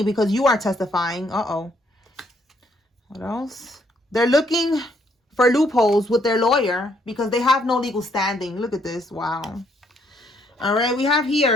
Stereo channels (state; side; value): normal; both; correlation 0.70